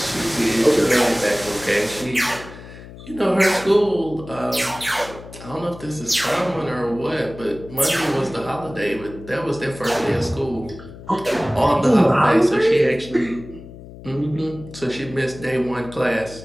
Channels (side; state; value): left; noise; hum, 16 dB below the sound